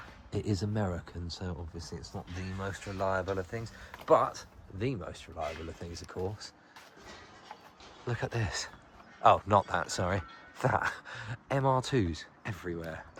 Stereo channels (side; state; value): both; identical; correlation 1.00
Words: it is American, so obviously it's not the most reliable of things, but the most reliable of things, of course. Look at this. Oh, not that, sorry. That. MR2s everywhere.